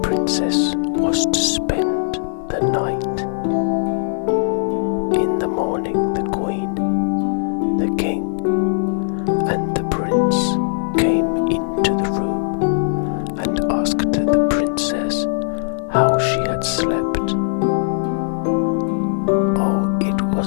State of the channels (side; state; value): right; silent; digital silence